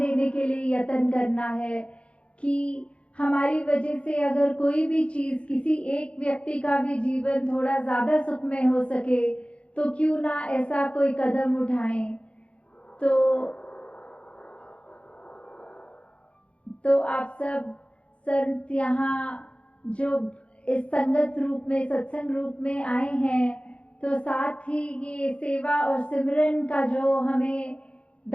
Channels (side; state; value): right; late; 0.060 ms